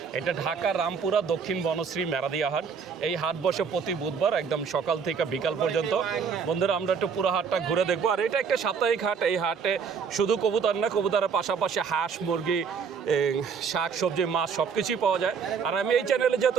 এটা ঢাকা রামপুরা দক্ষিণ বনশ্রী মেরাদিয়া হাট। এই হাট বসে প্রতি বুধবার একদম সকাল থেকে বিকাল পর্যন্ত। বন্ধুরা, আমরা একটু পুরো হাটটা ঘুরে দেখবো। আর এটা একটা সাপ্তাহিক হাট। এই হাটে শুধু কবুতর না, কবুতরের পাশাপাশি হাঁস, মুরগি, শাক সবজি, মাছ সব কিছুই পাওয়া যায়। আর আমি এই চ্যানেলে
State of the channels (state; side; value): quieter; left; 6.1 dB